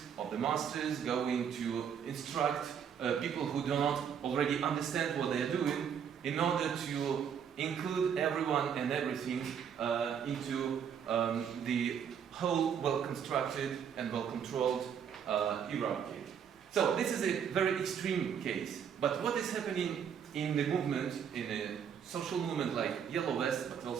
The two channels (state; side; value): quieter; left; 7.9 dB